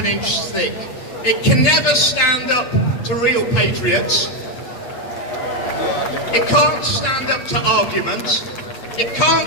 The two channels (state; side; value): late; right; 8.2 ms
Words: inch thick. It can never stand up to real patriots. It can't stand up to arguments. It